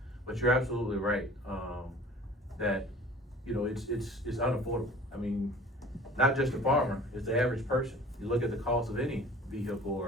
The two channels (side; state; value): both; normal; correlation 0.46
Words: But you're absolutely right. that, you know, it's unaffordable. I mean, not just the farmer, it's the average person. You look at the cost of any vehicle